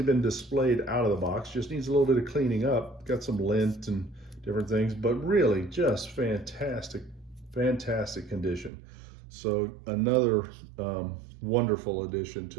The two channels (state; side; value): drops out; left; at 8.7 s